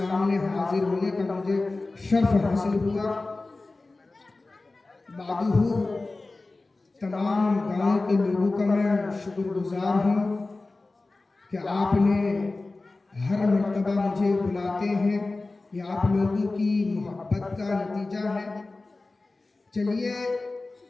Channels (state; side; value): quieter; right; 3.3 dB